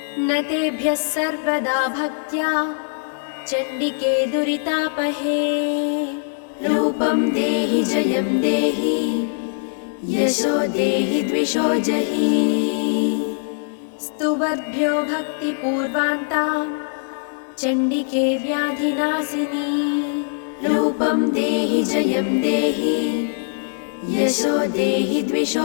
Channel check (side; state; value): right; silent; digital silence